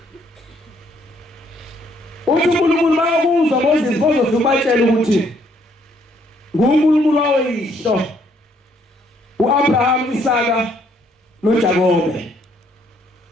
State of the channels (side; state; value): both; normal; correlation 0.68